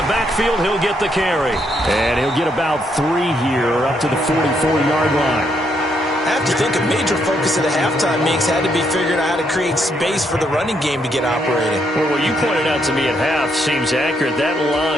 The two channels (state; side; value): normal; both; correlation 0.75